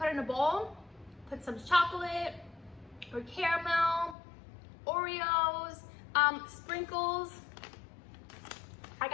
in a bowl, put some chocolate or caramel, Oreos, sprinkles. I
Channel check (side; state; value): right; drops out; at 4.2 s